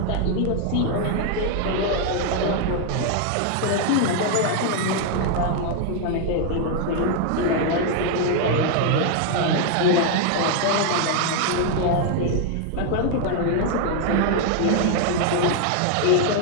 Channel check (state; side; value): different; both; correlation 0.00